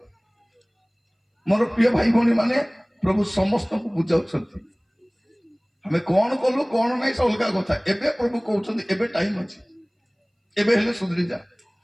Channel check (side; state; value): both; identical; correlation 1.00